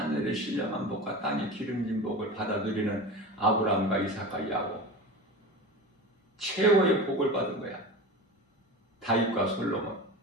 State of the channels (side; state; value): both; normal; correlation 0.30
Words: 신령한 복과 땅의 기름진 복을 받아 누리는 아브라함과 이삭과 야곱, 최고의 복을 받은 거야. 다윗과 솔로몬.